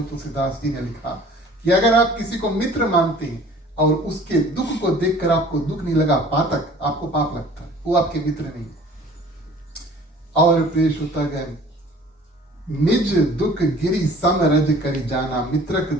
तुलसीदास जी ने लिखा कि अगर आप किसी को मित्र मानते हैं और उसके दुख को देखकर आपको दुख नहीं लगा, पातक, आपको पाप लगता है, वो आपके मित्र नहीं। और प्रिय श्रोतागण, निज दुख गिरी सम रज करी जाना, मित्रक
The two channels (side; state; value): both; normal; correlation 0.49